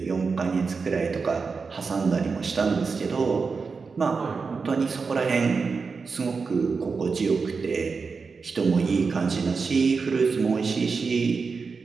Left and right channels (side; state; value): left; quieter; 4.9 dB